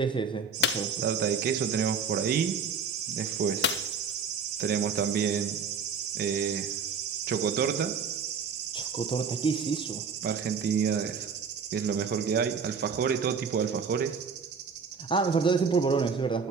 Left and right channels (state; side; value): quieter; left; 5.5 dB